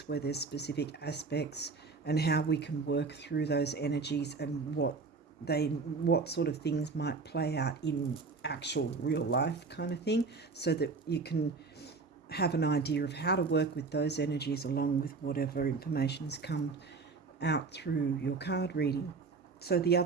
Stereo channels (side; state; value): left; quieter; 4.4 dB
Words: where there's specific aspects and how we can work through those energies and what sort of things might play out in actual real life kind of thing, so that you can have an idea of how to work with those energies along with whatever information has come out through your card reading. So the